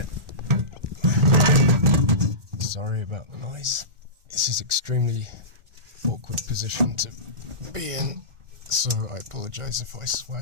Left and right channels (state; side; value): late; left; 1.4 ms